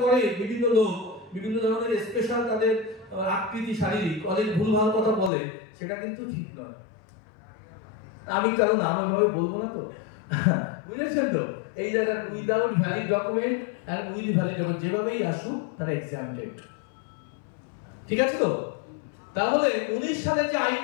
করে বিভিন্ন লোক, বিভিন্ন ধরনের স্পেশাল তাদের আকৃতি শারীরিক অনেক ভুলভাল কথা বলে, সেটা কিন্তু ঠিক নয়। আমি কারণ নাম ভাবে বলবো না তো, বুঝেছেন তো? এই জায়গায় উইদাউট ভ্যালিড ডকুমেন্ট আর উইথ ভ্যালিড ডকুমেন্ট যেভাবেই আসুক তারা এক্সাম্পটেড, ঠিক আছে তো? তাহলে 19 সালে যে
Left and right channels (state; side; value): drops out; right; at 5.3 s